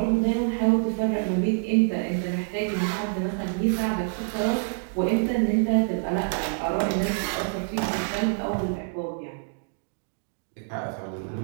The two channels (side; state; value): left; silent; digital silence